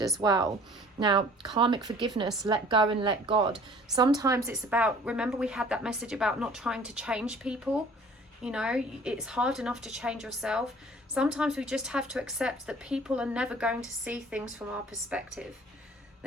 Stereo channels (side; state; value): both; normal; correlation 0.51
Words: as well. Now, karmic forgiveness, let go and let God. Sometimes it's about, remember we had that message about not trying to change people. You know, it's hard enough to change yourself. Sometimes we just have to accept that people are never going to see things from our perspective.